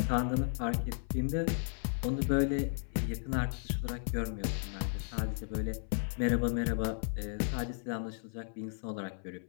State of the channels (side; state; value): right; silent; 55 dB below the other